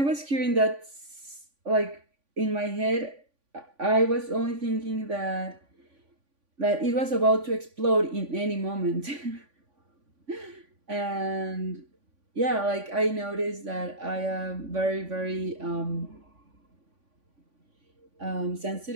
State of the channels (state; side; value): late; left; 3.5 ms